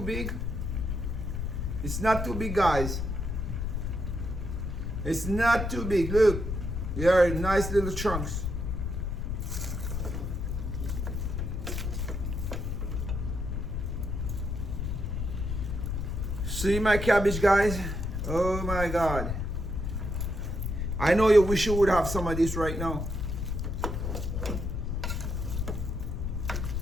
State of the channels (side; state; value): left; noise; rumble, 2 dB below the sound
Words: big. It's not too big, guys. It's not too big. Look, they are nice little chunks. See my cabbage, guys? Oh my God. I know you wish you would have some of this right now.